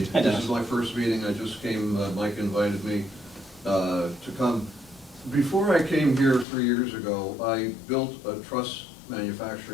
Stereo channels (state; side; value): drops out; right; at 6.5 s